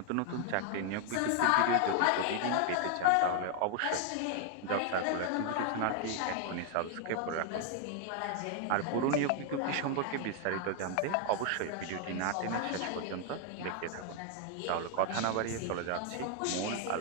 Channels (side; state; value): both; different; correlation 0.00